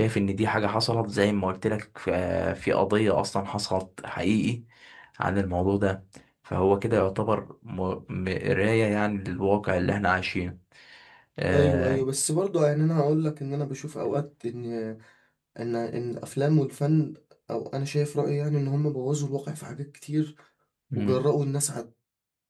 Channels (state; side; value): identical; both; correlation 1.00